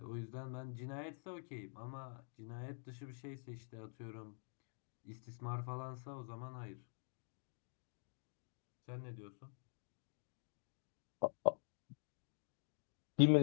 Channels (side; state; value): right; silent; digital silence